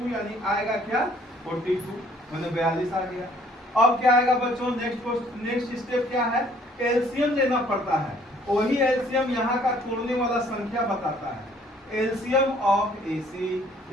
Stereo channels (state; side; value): normal; both; correlation 0.60